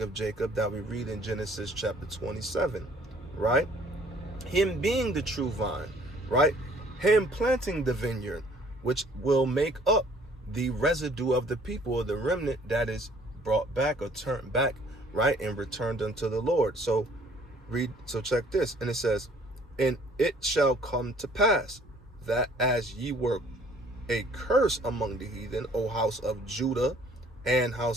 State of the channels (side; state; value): both; normal; correlation 0.58